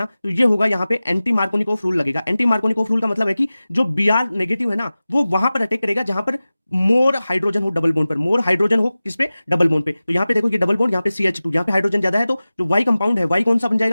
तो ये होगा यहाँ पे एंटी मार्कोनिकोव रूल लगेगा। एंटी मार्कोनिकोव रूल का मतलब है कि जो Br नेगेटिव है ना, वो वहां पर अटैक करेगा जहां पर मोर हाइड्रोजन हो डबल बॉन्ड पर, मोर हाइड्रोजन हो किस पे? डबल बॉन्ड पे। तो यहाँ पे देखो ये डबल बॉन्ड, यहाँ पे CH2, यहाँ पे हाइड्रोजन ज्यादा है, तो जो Y कंपाउंड है, Y कौन सा बन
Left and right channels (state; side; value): inverted; both; correlation -0.97